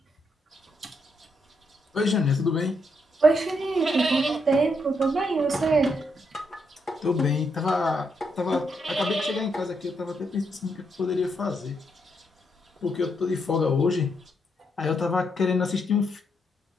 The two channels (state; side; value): normal; both; correlation 0.78